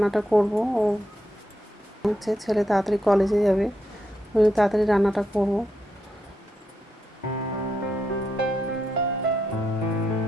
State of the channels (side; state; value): both; normal; correlation 0.83